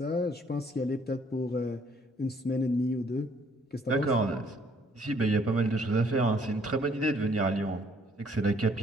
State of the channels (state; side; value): normal; both; correlation 0.63